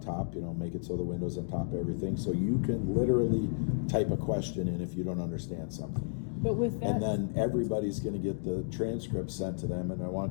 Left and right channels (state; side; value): silent; right; digital silence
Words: top, you know, make it so the window's on top of everything. So you can literally type a question in if you don't understand something. But with that, and then everybody's going to get the transcript sent to them, and I